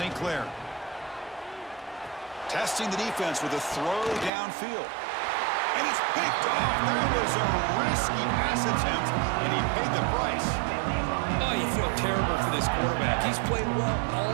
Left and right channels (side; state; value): left; drops out; at 4.3 s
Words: Clair. Testing the defense with a throw downfield. And it's picked off. That was a risky pass attempt, and he paid the price. Oh, you feel terrible for this quarterback. He's played well